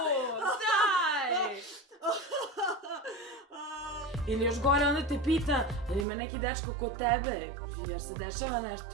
Ili još gore, onda te pita, ili ima neki dečko kod tebe, jer se dešava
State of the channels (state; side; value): drops out; left; at 6.1 s